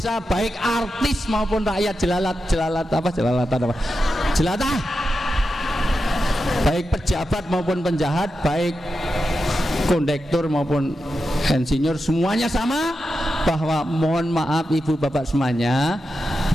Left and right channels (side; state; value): both; normal; correlation 0.89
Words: baik artis maupun rakyat jelatah, baik pejabat maupun penjahat, baik kondektur maupun insinyur, semuanya sama. Bahwa mohon maaf ibu bapak semuanya,